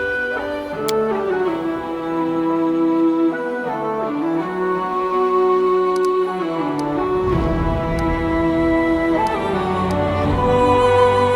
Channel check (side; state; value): both; identical; correlation 1.00